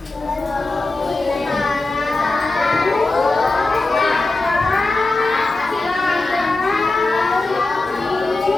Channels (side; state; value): right; quieter; 3.2 dB